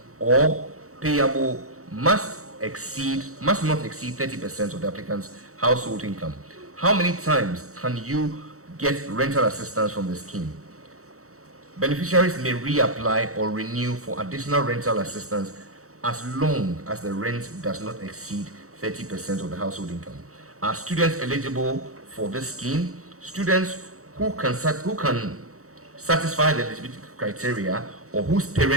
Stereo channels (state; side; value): late; left; 0.64 ms